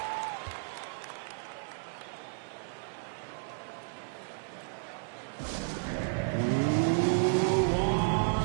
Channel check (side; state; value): left; silent; 56 dB below the other